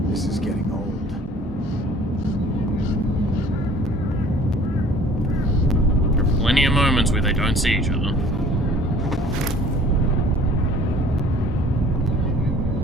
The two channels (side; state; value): both; normal; correlation 0.51